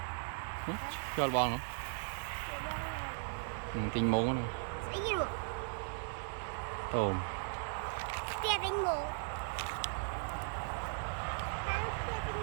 nữa cho là bòn nữa tình muốn này tôm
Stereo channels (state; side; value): silent; left; digital silence